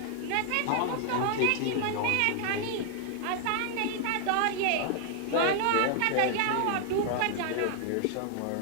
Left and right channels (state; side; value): different; both; correlation 0.00